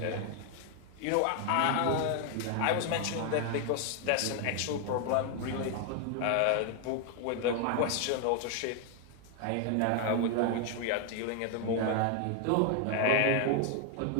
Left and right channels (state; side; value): different; both; correlation 0.00